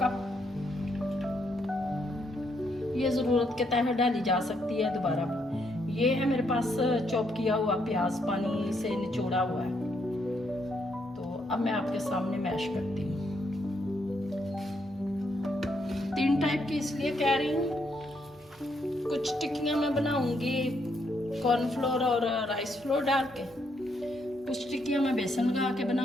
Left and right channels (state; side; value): normal; both; correlation 0.75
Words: कप। ये ज़रूरत के तहत डाली जा सकती है दोबारा। ये है मेरे पास चॉप किया हुआ प्याज, पानी से निचोड़ा हुआ है। तो अब मैं आपके सामने मैश करती हूँ। 3 टाइप की इसलिए कह रही हूँ। कुछ टिक्कियाँ मैं बनाऊंगी कॉर्नफ्लोर और राइस फ्लोर डाल के, कुछ टिक्कियाँ मैं बेसन लगा के